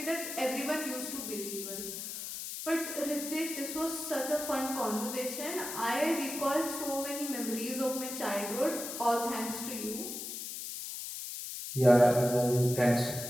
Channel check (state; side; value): noise; left; hiss, 7 dB below the sound